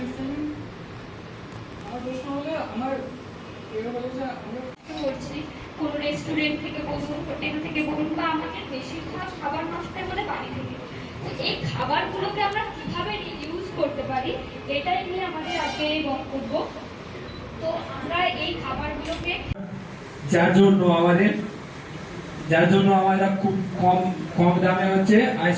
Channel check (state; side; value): identical; both; correlation 1.00